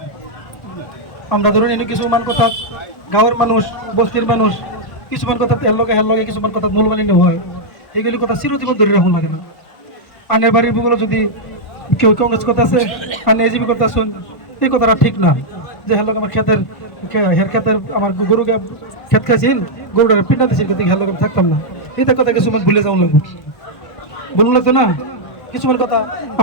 আমরা ধরুন এনে কিছু মান কথা গাঁয়ের মানুষ বস্তির মানুষ কিছু মান কথা হেল লগে কিছু মান কথা মূলমালিন্য হয় এগুলি কথা চিরজীবন ধরে রাখুন লাগে না আনের বাড়ির বুগুলো যদি কেউ কংগ্রেস কথা আছে আনে এজিবি কথা শুন এই কথাটা ঠিক না যে হেল আমার ক্ষেতের ক্ষেতের আমার গরুকে ক্ষেত খাইছিল গরুটা পিন্ডা দিছিল কিন্তু হেল থাকতাম না এটা কথা কিছু মান ভুলে যাওয়া লাগবে বলুন লাগতো না কিছুমান কথা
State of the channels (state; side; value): late; right; 1.4 ms